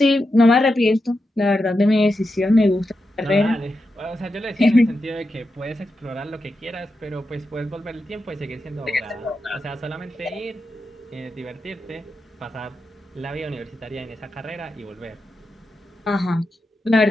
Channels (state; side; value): normal; both; correlation 0.88